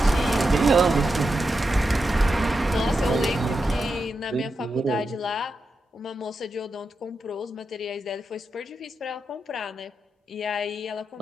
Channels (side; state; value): both; normal; correlation 0.88